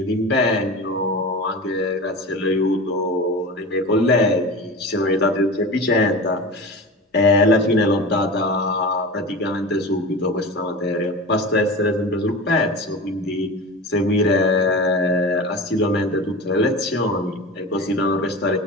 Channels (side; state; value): both; normal; correlation 0.31